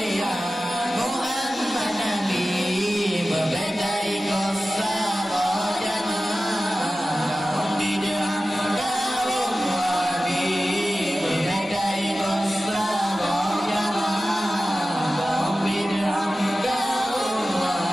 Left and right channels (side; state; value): both; normal; correlation 0.95